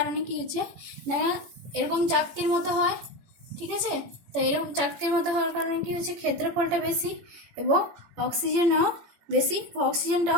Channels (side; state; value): left; late; 18 ms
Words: কি হয়েছে না, এরকম চাকতির মতো হয়, ঠিক আছে? তো এরকম চাকতির মতো হওয়ার কারণে কি হয়েছে, ক্ষেত্রফলটা বেশি এবং